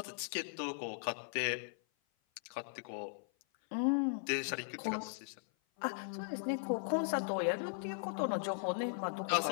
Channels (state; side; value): silent; right; 52 dB below the other